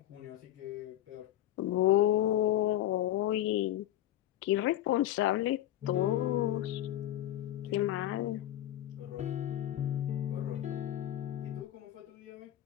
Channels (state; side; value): quieter; right; 13.2 dB